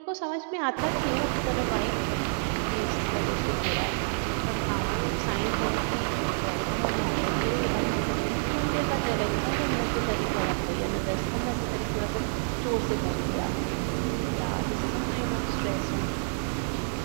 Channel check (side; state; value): left; silent; digital silence